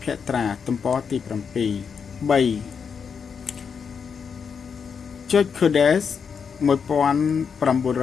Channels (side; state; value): right; quieter; 6.3 dB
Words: ភត្រាទំព័រទី7 3. George Codes